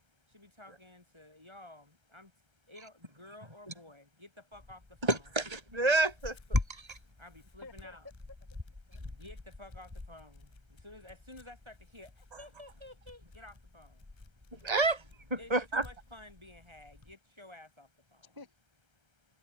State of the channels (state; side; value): late; left; 1.3 ms